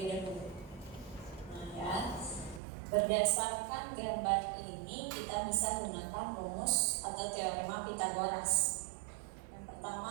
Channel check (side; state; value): left; drops out; at 2.6 s